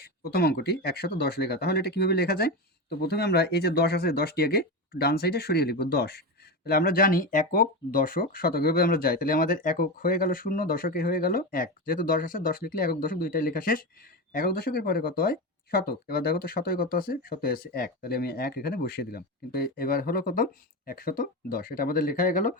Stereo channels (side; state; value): both; normal; correlation 0.19